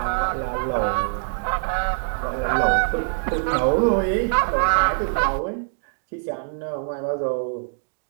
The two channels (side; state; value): left; silent; digital silence